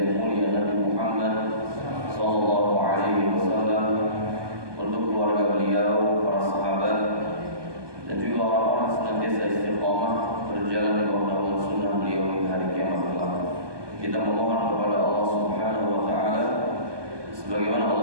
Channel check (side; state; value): left; late; 1.2 ms